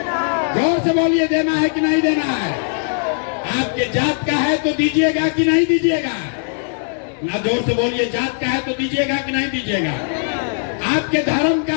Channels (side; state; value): right; silent; 66 dB below the other